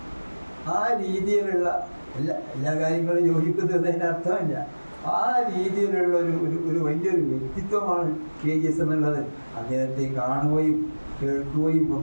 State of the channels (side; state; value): both; inverted; correlation -1.00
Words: ആ രീതിയിലുള്ള എല്ലാ കാര്യങ്ങളും യോജിക്കുന്നതിന് അർത്ഥമില്ല. ആ രീതിയിലുള്ള ഒരു വലിയൊരു വ്യക്തിത്വമാണ് KGS എന്നുള്ളത്. അദ്ദേഹത്തെ കാണുകയും കേൾക്കുകയും